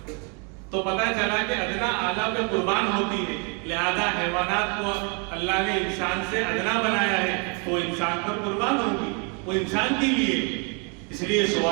تو پتہ چلا کہ ادنا اعلیٰ پہ قربان ہوتی ہے، لہذا حیوانات کو اللہ نے انسان سے ادنا بنایا ہے، تو انسان پر قربان ہوگی، وہ انسان کے لیے. اس لیے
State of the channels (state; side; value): quieter; left; 34.9 dB